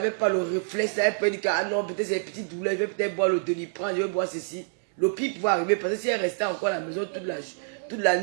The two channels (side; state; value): left; silent; digital silence